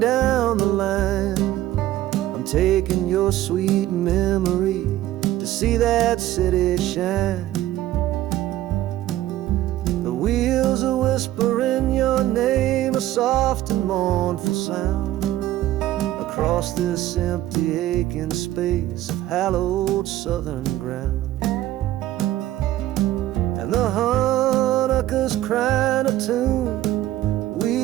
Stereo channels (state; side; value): quieter; left; 14.2 dB